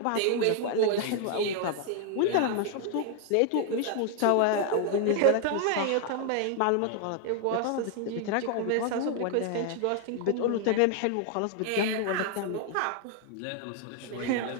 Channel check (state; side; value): different; both; correlation 0.00